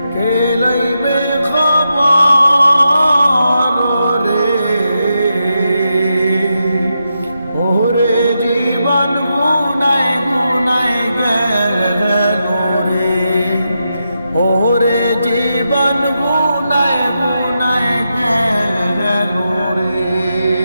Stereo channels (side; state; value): both; inverted; correlation -0.86